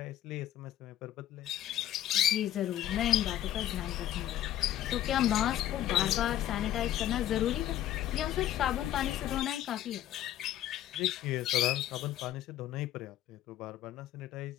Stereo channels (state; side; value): quieter; right; 12.4 dB